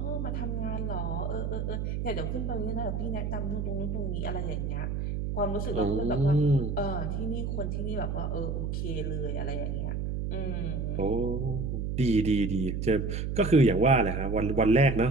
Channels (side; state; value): right; noise; hum, 2 dB below the sound